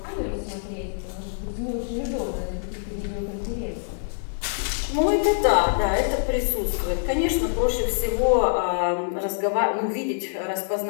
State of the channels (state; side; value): silent; right; 62 dB below the other